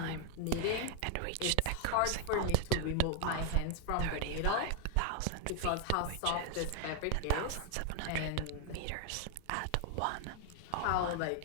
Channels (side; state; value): both; different; correlation 0.00